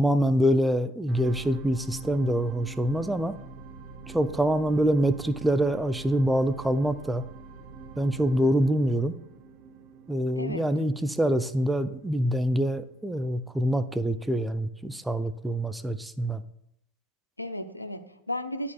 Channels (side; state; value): both; normal; correlation 0.82